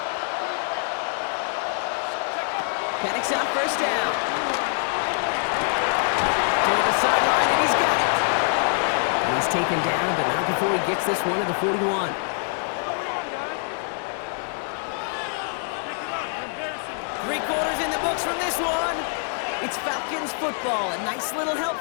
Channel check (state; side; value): silent; right; 56 dB below the other